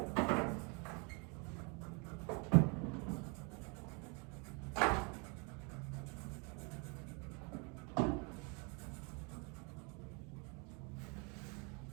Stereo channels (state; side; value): quieter; left; 33.4 dB